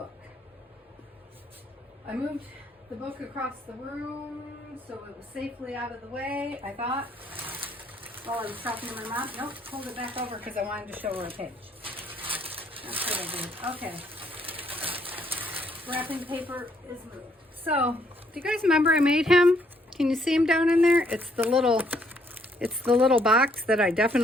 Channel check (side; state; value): both; normal; correlation 0.69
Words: I moved the book across the room so it was safely out of the way, I thought. While I was talking to my mom. Nope, hold it back over because I wanted to show her a page. That's what I did. Okay. Wrapping paper is moved. So, do you guys remember I made him? Can you see him down in there? It's the little box that I